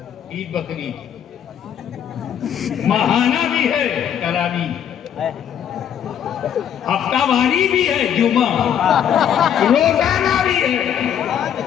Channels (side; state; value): right; quieter; 9.2 dB